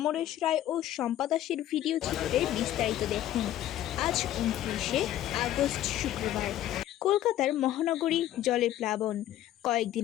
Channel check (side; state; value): right; quieter; 12.8 dB